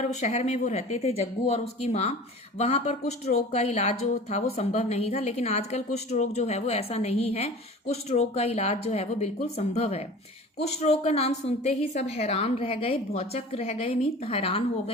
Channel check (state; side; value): normal; both; correlation 0.40